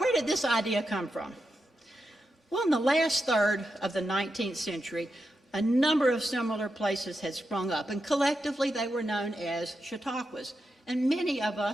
did this idea come from? Well, in the last third of the 19th century, a number of similar places had sprung up, and collectively they were known as chautauquas. And many of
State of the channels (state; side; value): normal; both; correlation 0.87